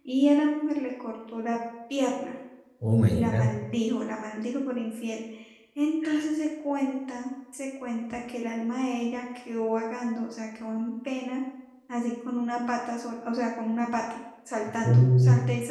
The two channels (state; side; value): identical; both; correlation 1.00